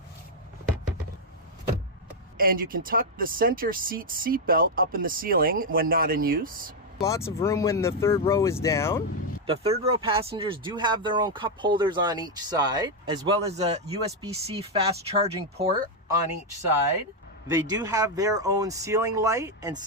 And you can tuck the center seat belt up in the ceiling when not in use. Lots of room when the third row is down. The third row passengers do have their own cup holders on each side, as well as a USB-C fast charging port on each side. They do have their own ceiling light and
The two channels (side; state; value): both; normal; correlation 0.01